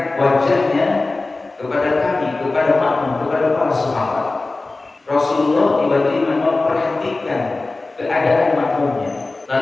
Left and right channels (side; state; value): right; quieter; 3.3 dB